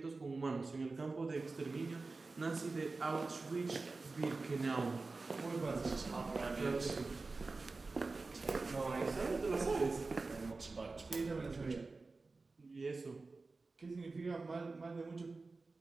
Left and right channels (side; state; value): left; quieter; 3.7 dB